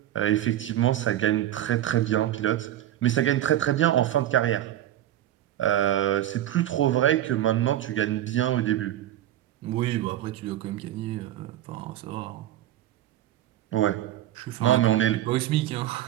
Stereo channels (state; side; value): quieter; left; 12.8 dB